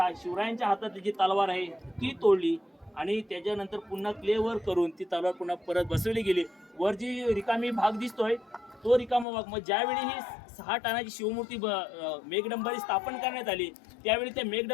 शिवरायांच्या हातातली जी तलवार आहे ती तोडली आणि त्याच्यानंतर पुन्हा क्लेवर करून ती तलवार पुन्हा परत बसवली गेली. वर जी रिकामी भाग दिसतोय तो रिकामा भाग. मग ज्यावेळी ही 6 टनाची शिवमूर्ती मेघडंबरी स्थापन करण्यात आली त्यावेळी त्या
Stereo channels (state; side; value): drops out; right; at 9.2 s